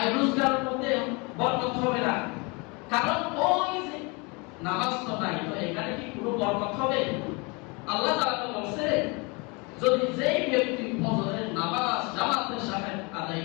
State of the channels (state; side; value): quieter; right; 29.0 dB